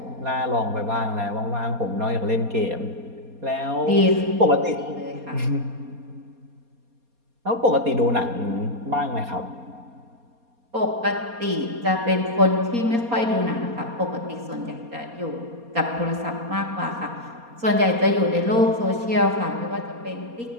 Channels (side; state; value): left; late; 4.2 ms